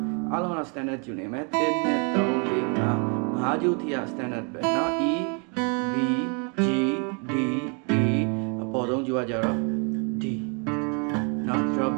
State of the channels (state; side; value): quieter; left; 36.5 dB